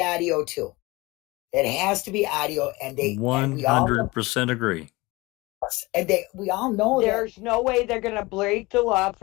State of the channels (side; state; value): right; quieter; 22.4 dB